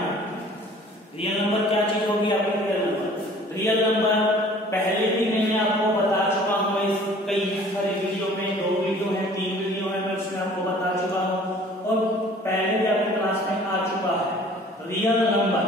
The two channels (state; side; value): normal; both; correlation 0.51